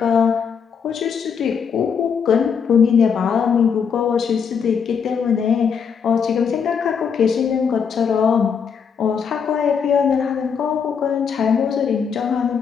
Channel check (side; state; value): right; quieter; 6.7 dB